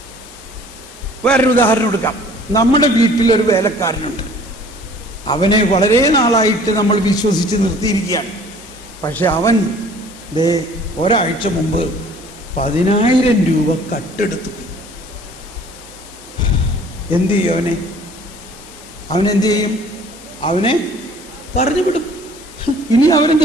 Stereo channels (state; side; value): normal; both; correlation 0.52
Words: വേറൊരു ഉദാഹരണം എടുക്കാം. നമ്മുടെ വീട്ടിലൊരു വേലക്കാരനുണ്ട്. അവനെ വളരെ നാളായിട്ട് നമ്മൾ വിശ്വസിച്ച് നിർത്തിയിരിക്കുകയാണ്. പക്ഷെ അവൻ ഒരാഴ്ച മുമ്പ് 10,000 രൂപ കട്ടെടുത്തു. എന്ത് ചെയ്യും അവനെന്ത് ചെയ്യും? അവനെ പറഞ്ഞു വിടും. ഇനി അവനെ